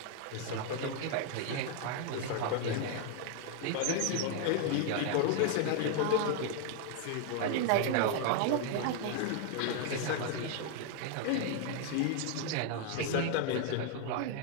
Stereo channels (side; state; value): both; different; correlation 0.00